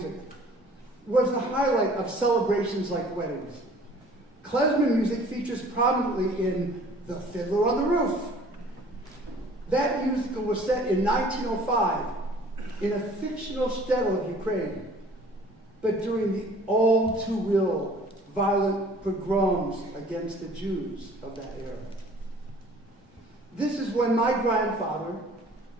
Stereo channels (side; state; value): both; normal; correlation 0.51